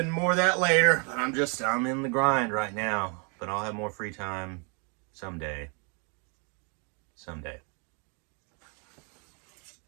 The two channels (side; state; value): left; quieter; 36.4 dB